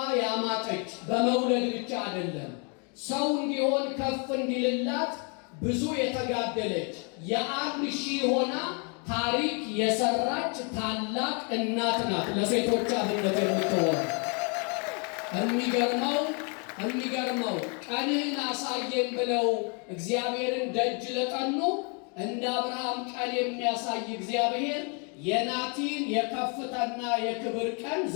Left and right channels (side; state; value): right; quieter; 36.2 dB